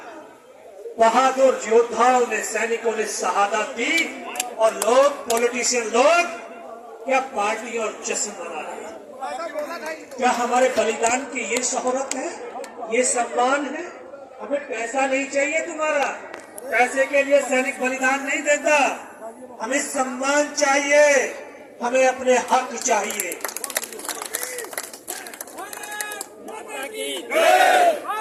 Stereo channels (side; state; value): both; identical; correlation 1.00